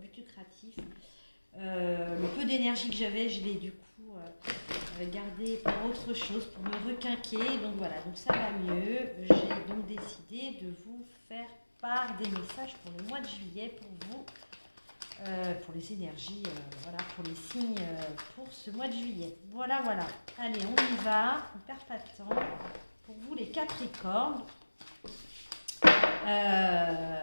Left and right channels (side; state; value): both; inverted; correlation -1.00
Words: lucratif. Le peu d'énergie que j'avais, je l'ai du coup gardé pour autre chose, pour me requinquer. Donc voilà, donc ça va mieux. J'ai donc décidé de vous faire part des messages pour le mois de juillet, pour vous, pour les énergies, voilà, pour les signes pour ce mois de juillet. Voilà, voilà. Allez, on y va, on ne perd pas de temps. Pour vous les Capricornes,